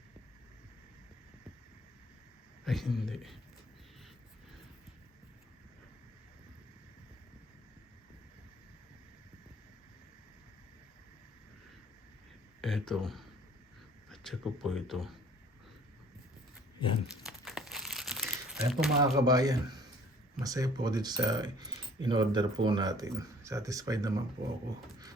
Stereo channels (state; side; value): normal; both; correlation 0.54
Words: Ay, hindi. Ito. Check ko po ito. Yan. Ayan po mga kabayan. Masaya po dito sa in-order po natin. Satisfied naman po ako.